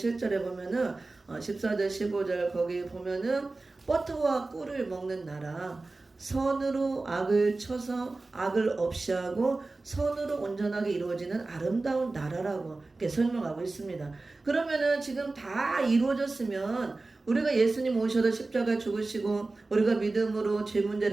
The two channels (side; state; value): left; quieter; 3.3 dB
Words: 보면은 14절 15절 거기 보면은 버터와 꿀을 먹는 나라, 선으로 악을 쳐서 악을 없이 하고 선으로 온전하게 이루어지는 아름다운 나라라고 이렇게 설명하고 있습니다. 그러면은 지금 다 이루어졌으면 우리가 예수님 오셔서 십자가에 죽으시고 우리가 믿음으로 죄